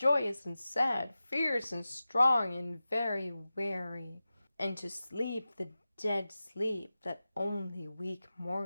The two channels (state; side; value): inverted; both; correlation -0.94